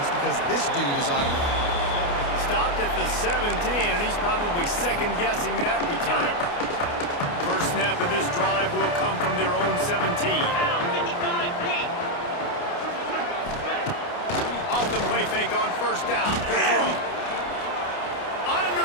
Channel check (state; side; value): late; right; 29 ms